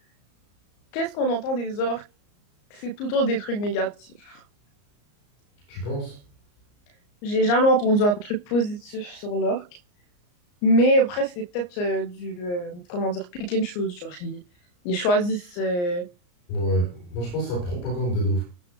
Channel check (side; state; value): right; late; 34 ms